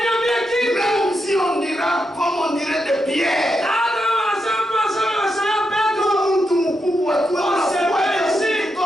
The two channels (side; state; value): both; normal; correlation 0.84